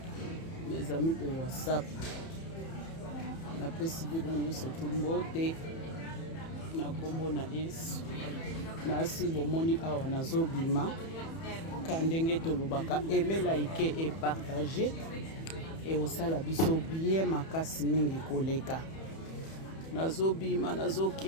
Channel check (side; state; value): right; late; 31 ms